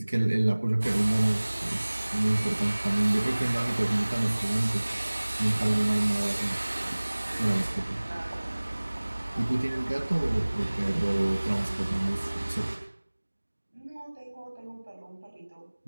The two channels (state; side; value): inverted; both; correlation -1.00